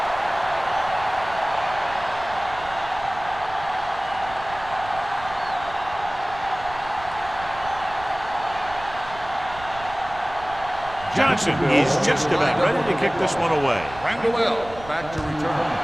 Johnson is just about ready to kick this one away. Randall back to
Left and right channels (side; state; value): right; noise; rumble, 16 dB below the sound